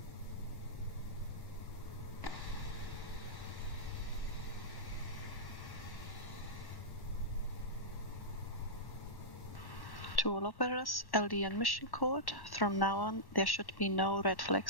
To all operators, LD and mission code. From now on, there should be no red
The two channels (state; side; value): late; right; 1.1 ms